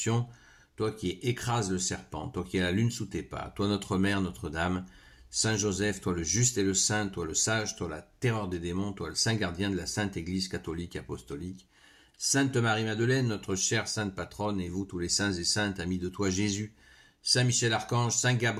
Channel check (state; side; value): identical; both; correlation 1.00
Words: toi qui écrases le serpent, toi qui as la lune sous tes pas, toi notre Mère, Notre-Dame, Saint Joseph, toi le juste et le saint, toi le sage, toi la terreur des démons, toi le saint gardien de la Sainte Église catholique apostolique, Sainte Marie-Madeleine, notre chère sainte patronne, et vous tous les saints et saintes, amis de toi Jésus, Saint Michel Archange, Saint